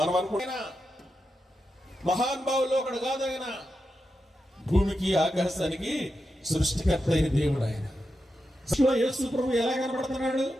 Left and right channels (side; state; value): both; normal; correlation 0.88